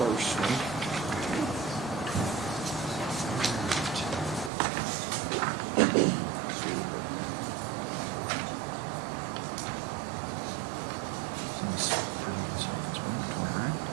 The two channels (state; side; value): drops out; left; at 4.5 s